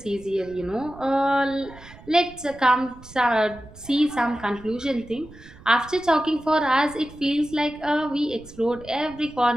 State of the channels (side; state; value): right; noise; rumble, 20 dB below the sound